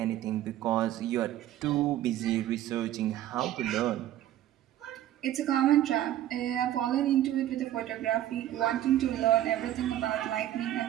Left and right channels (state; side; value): quieter; left; 12.8 dB